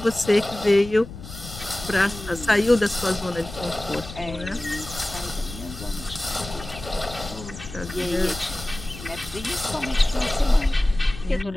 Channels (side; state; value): left; noise; rumble, 13 dB below the sound